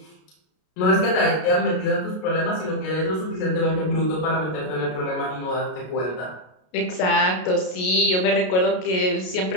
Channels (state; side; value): late; right; 33 ms